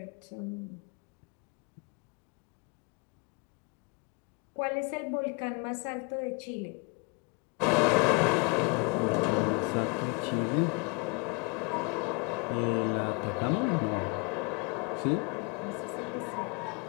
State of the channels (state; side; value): quieter; right; 30.4 dB